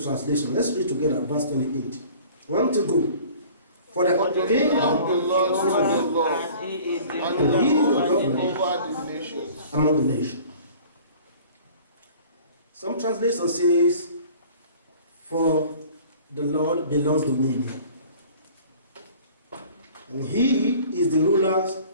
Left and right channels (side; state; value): both; inverted; correlation -0.48